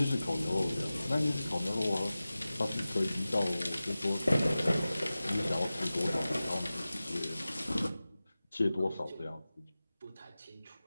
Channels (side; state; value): both; inverted; correlation -0.96